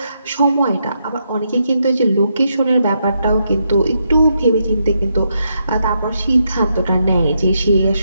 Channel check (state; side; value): inverted; both; correlation -0.80